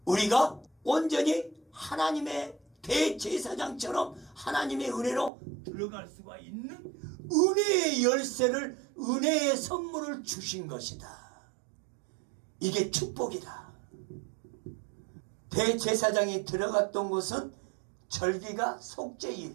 우리가 온전히 하나님의 대제사장처럼 하나님의 은혜로 들어갈 수가 있는 은혜의 열쇠를 은혜의 선물을 주신 것이다. 이게 축복이다. 대제사장이 들어갔던 곳은 절기가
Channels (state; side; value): drops out; left; at 5.3 s